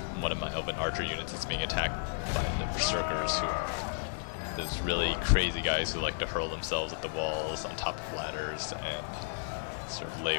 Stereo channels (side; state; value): right; silent; digital silence